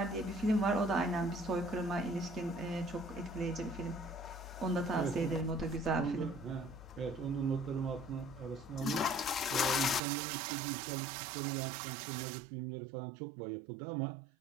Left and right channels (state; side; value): drops out; left; at 10.0 s